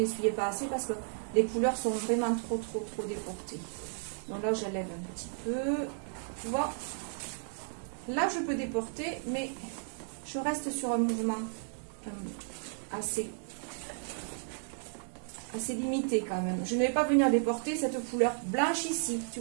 pas assez parce que les couleurs sont vraiment trop déportées. Donc là, j'enlève un petit peu. Tu vois, là, je peux déporter, mais je reste sur un mouvement assez limité quand même. Je ne vais pas venir déporter cette couleur blanche ici. Tu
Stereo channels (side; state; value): left; silent; digital silence